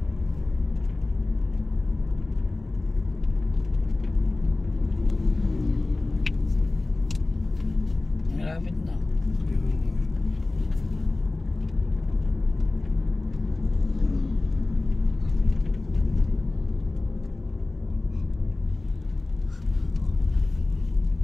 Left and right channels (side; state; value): right; quieter; 3.1 dB